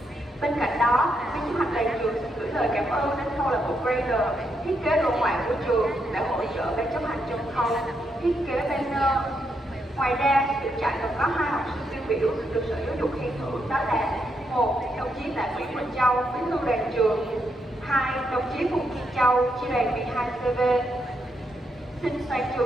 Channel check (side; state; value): both; normal; correlation 0.80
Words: Bên cạnh đó, ban chấp hành đoàn trường xin gửi lời cảm ơn đến câu lạc bộ Grader, thiết kế đồ họa của trường đã hỗ trợ ban chấp hành trong khâu thiết kế banner. Ngoài ra, được trại còn có 2 học sinh tiêu biểu được Sở Giáo dục khen thưởng, đó là 1. Đồng chí Tạ Nguyễn Bình Châu, bí thư đoàn trường. 2. Đồng chí Phùng Thiên Châu, chi đoàn 12 CV. Xin toàn